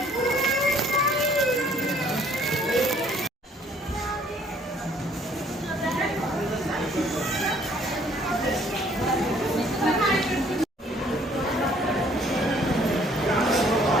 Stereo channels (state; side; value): normal; both; correlation 0.61